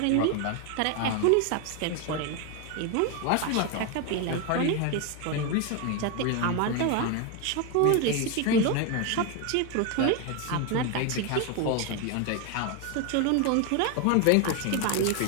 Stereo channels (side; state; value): both; different; correlation 0.02